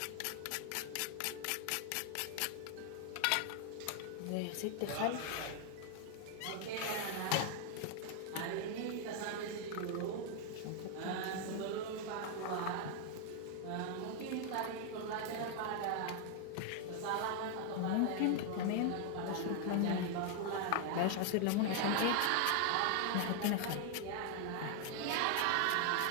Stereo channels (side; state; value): both; different; correlation 0.00